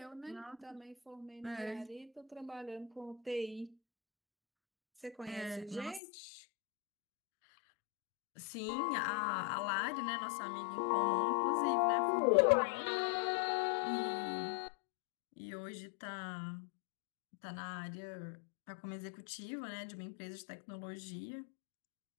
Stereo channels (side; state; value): right; drops out; at 6.0 s